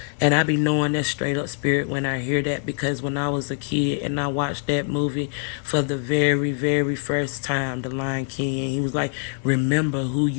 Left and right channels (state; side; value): silent; right; 63 dB below the other